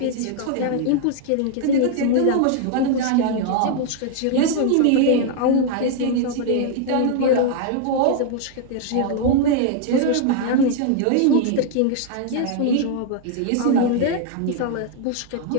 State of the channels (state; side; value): different; both; correlation 0.00